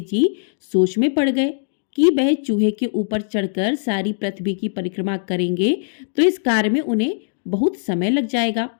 जी सोच में पड़ गए कि वह चूहे के ऊपर चढ़कर सारी पृथ्वी की परिक्रमा करेंगे तो इस कार्य में उन्हें बहुत समय लग जाएगा।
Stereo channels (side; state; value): right; silent; digital silence